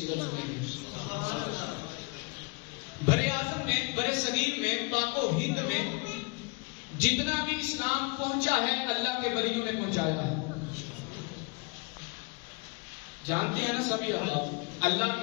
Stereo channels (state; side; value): quieter; right; 31.0 dB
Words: سنیں گے۔ برے اعظم میں، برے صغیر میں، پاک و ہند میں جتنا بھی اسلام پہنچا ہے اللہ کے ولیوں نے پہنچایا ہے۔ جانتے ہیں نا سبھی اللہ